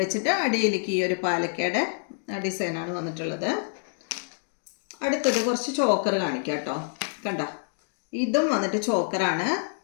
വെച്ചിട്ട് അടിയിലേക്ക് ഈ ഒരു പാലക്കയുടെ ഡിസൈനാണ് വന്നിട്ടുള്ളത്. അടുത്തത് കുറച്ച് ചോക്കർ കാണിക്കാം കേട്ടോ. കണ്ട ഇതും വന്നിട്ട് ചോക്കറാണ്.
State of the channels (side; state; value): right; silent; digital silence